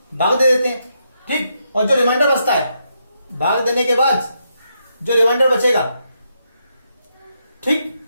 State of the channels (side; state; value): both; inverted; correlation -0.80